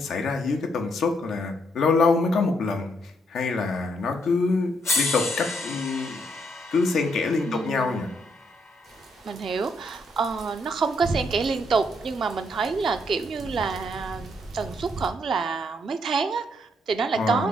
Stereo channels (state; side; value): normal; both; correlation 0.74